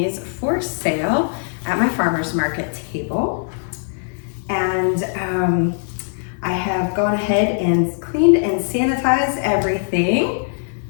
for sale at my farmer's market table. And I have gone ahead and cleaned and sanitized everything,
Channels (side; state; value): right; silent; digital silence